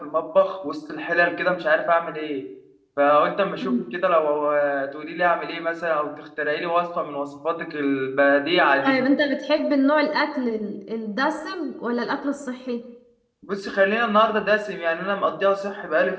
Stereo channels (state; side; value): identical; both; correlation 1.00